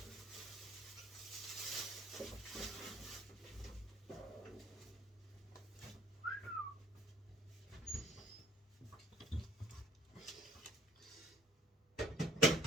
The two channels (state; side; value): normal; both; correlation 0.55